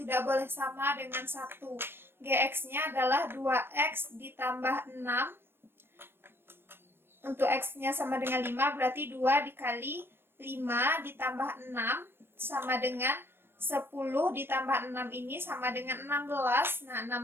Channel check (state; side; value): late; left; 0.11 ms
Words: boleh sama dengan 1. Gx-nya adalah 2x ditambah 6. Untuk x-nya sama dengan 5, berarti 2 dikali 5 ditambah 6 sama dengan 10 ditambah 6 ini sama dengan 16. Nah,